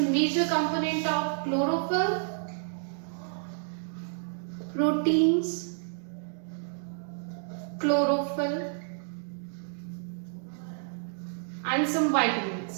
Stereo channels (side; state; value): left; silent; digital silence